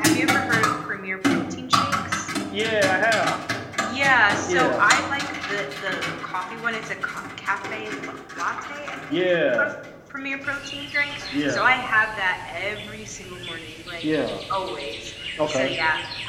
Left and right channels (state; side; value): identical; both; correlation 1.00